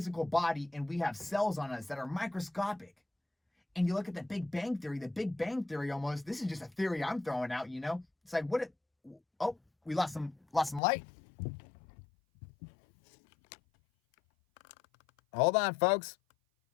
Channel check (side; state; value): right; drops out; at 10.8 s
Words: body and we have cells on us that are microscopic. And you look at the Big Bang Theory almost, this is just a theory I'm throwing out, you know? It's like, we lost some light. Hold on, folks.